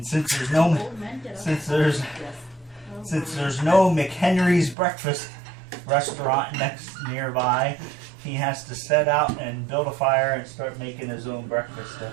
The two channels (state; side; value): drops out; left; at 4.8 s